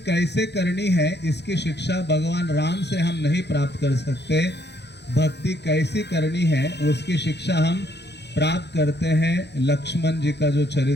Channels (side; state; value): right; late; 0.50 ms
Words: करनी है इसकी शिक्षा भगवान राम से हम नहीं प्राप्त कर सकते। भक्ति कैसी करनी है उसकी शिक्षा हम प्राप्त करते हैं लक्ष्मण जी का जो